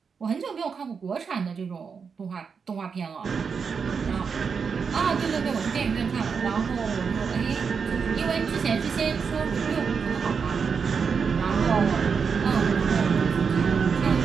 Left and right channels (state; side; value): quieter; left; 5.9 dB